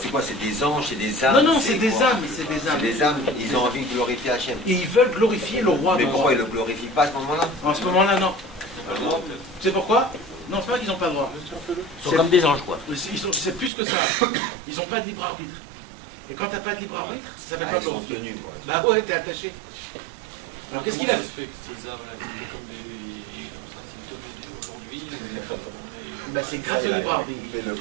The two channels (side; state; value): left; drops out; at 13.7 s